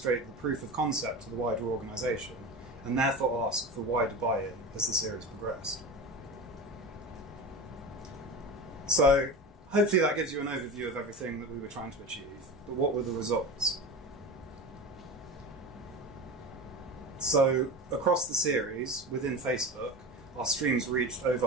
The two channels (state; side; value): normal; both; correlation 0.27